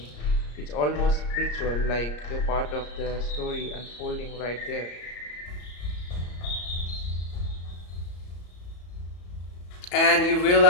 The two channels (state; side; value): late; right; 34 ms